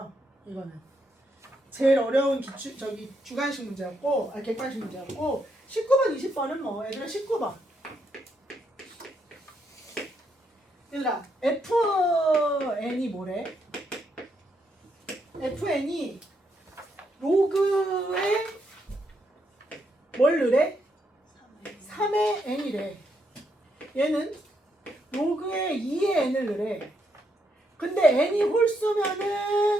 이거는. 제일 어려운 주관식 문제였고, 객관식 문제였고, 19번, 20번은 뭐, 얘들아 19번. 얘들아, FN이 뭐래? FN이 로그에 뭘 넣으래? 3의 n이래. 얘는 로그에 2의 n을 넣으래. 근데 n이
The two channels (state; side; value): normal; both; correlation 0.78